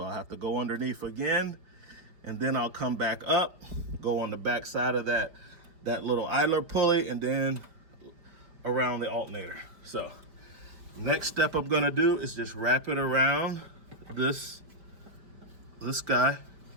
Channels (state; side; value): late; left; 5.1 ms